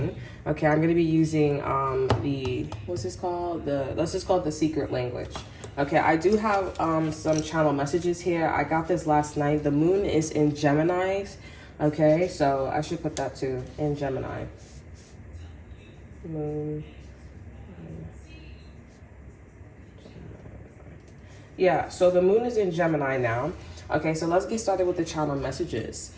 Okay, I'm going to be using what's this called? Let's just call it the secret language. Okay, I do have some channel messages here. I got this last night. The moon is in Gemini. Okay, so I should put that too, in Gemini. Moon. Yeah, so the moon is in Gemini now. Okay, so let's get started with the channel messages.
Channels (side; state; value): both; identical; correlation 1.00